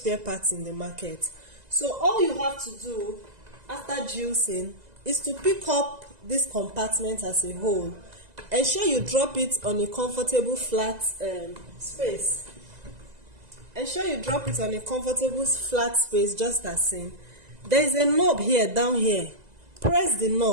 parts in the market. So all you have to do after juicing is to pick up this compartment as a whole. Ensure you drop it on a comfortable flat space. Ensure you drop it on a comfortable flat space, just as seen. There is a knob here, down here. Press the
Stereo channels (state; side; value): late; left; 2.0 ms